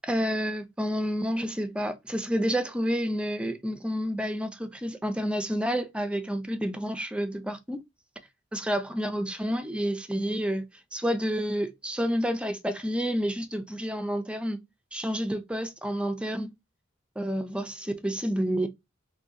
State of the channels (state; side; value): normal; both; correlation 0.88